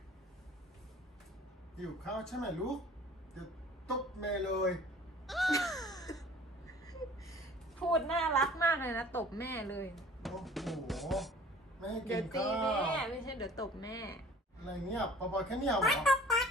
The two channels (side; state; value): both; normal; correlation 0.49